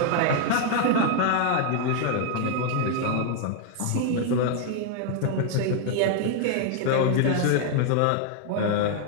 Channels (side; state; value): both; different; correlation 0.00